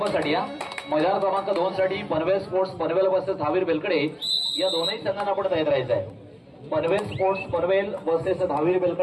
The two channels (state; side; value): identical; both; correlation 1.00